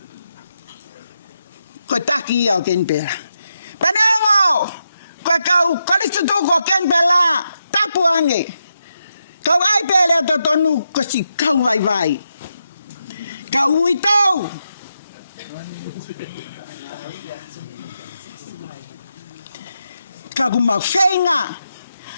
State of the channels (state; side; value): inverted; both; correlation -0.85